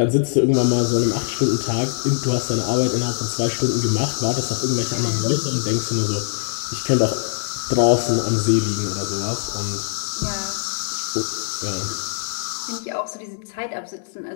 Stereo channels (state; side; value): silent; right; digital silence